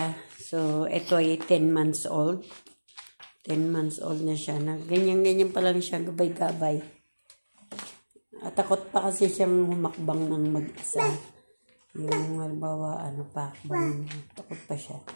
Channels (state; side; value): inverted; both; correlation -1.00